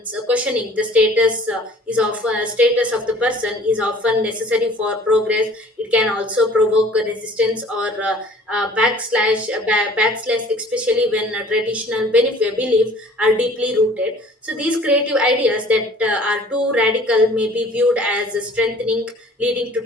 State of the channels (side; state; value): both; normal; correlation 0.51